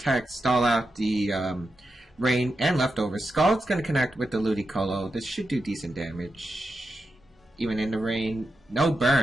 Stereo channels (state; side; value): normal; both; correlation 0.88